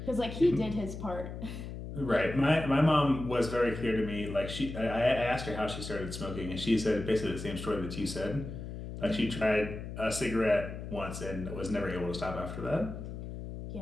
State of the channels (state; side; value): noise; left; hum, 8 dB below the sound